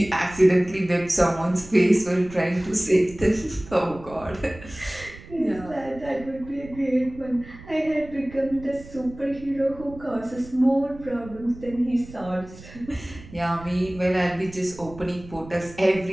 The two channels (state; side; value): noise; right; rumble, 17 dB below the sound